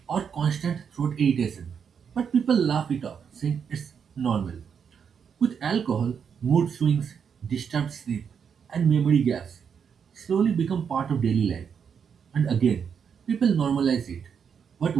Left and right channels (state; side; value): quieter; left; 7.0 dB